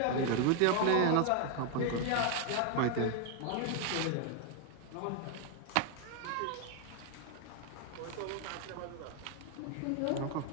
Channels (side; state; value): both; different; correlation 0.01